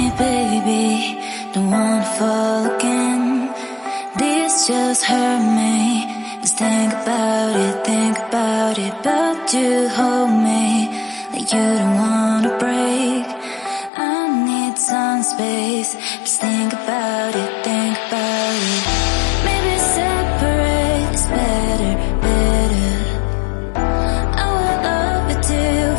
baby, don't wanna fall again. This just hurt me. Just think about it, but you hold me like you don't wanna break. I need some space. Just think about it, Maybe separate is better. I will love you till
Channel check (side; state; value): right; drops out; at 13.9 s